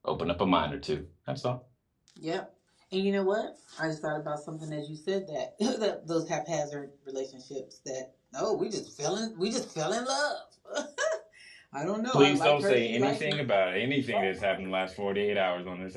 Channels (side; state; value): both; identical; correlation 1.00